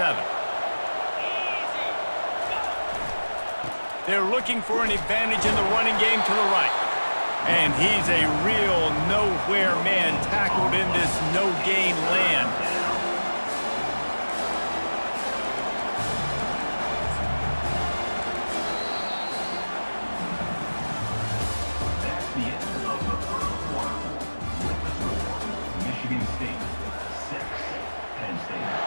They're looking for an advantage in the running game to the right. And he's a real nowhere man tackled in this no-gain land. That's the end of the first quarter. With the score, Michigan State 6, Penn State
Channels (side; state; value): both; inverted; correlation -1.00